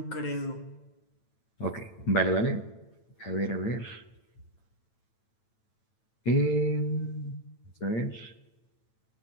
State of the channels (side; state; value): right; late; 9.0 ms